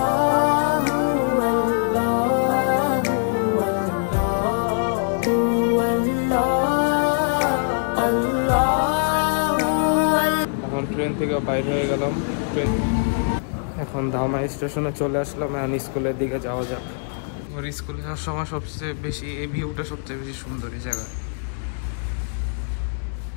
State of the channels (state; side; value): silent; right; 64 dB below the other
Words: এখন ট্রেন থেকে বাইর হয়ে গেলাম। এখন ধামা স্টেশনে চলে আসলাম। এখন স্কুলের দিকে যাওয়া যাক। আমার স্কুলে যাওয়ার সময় সবচেয়ে বেশি এই ভিউটা সবচেয়ে বেশি সুন্দর এই জায়গায়।